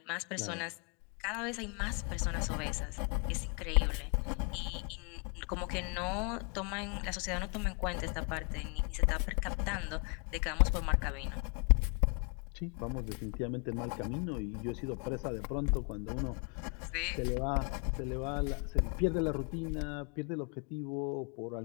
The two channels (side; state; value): right; quieter; 37.3 dB